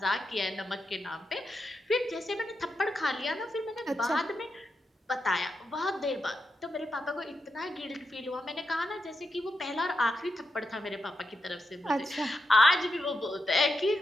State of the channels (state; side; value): normal; both; correlation 0.86